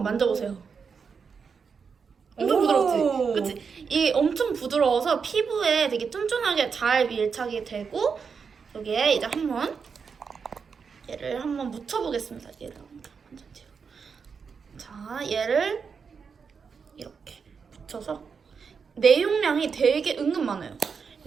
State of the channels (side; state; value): left; quieter; 5.8 dB